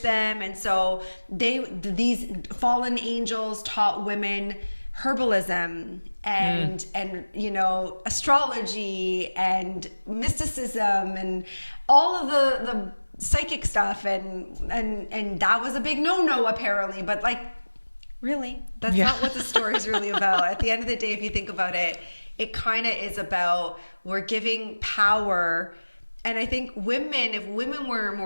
and so these fallen angels taught women herbalism and you know, astrology and mysticism and all of the psychic stuff, and that was a big no apparently. But like, really, that's not what the story is really about. At the end of the day, if you think about it, it kind of is about, we're giving power. And I think if women were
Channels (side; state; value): both; inverted; correlation -1.00